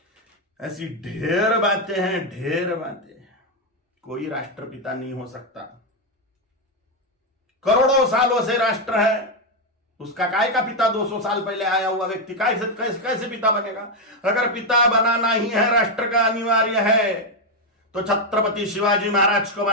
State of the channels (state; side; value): normal; both; correlation 0.04